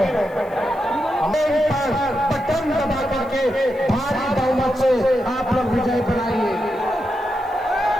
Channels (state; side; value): noise; right; hiss, 30 dB below the sound